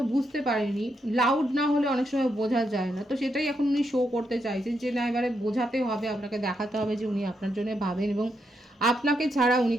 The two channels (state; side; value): normal; both; correlation 0.81